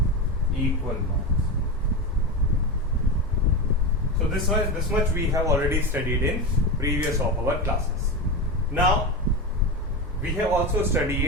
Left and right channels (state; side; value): normal; both; correlation 0.19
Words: equal marks. So this much we have already studied in previous of our classes. Now we have also